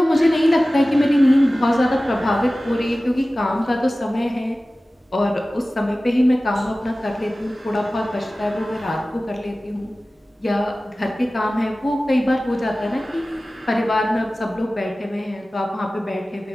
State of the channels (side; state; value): both; normal; correlation 0.97